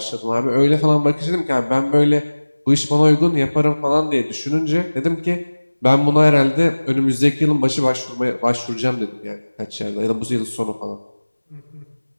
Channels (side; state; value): both; inverted; correlation -1.00